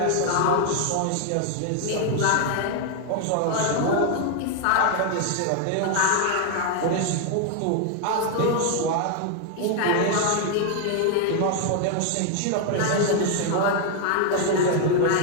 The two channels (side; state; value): both; different; correlation 0.00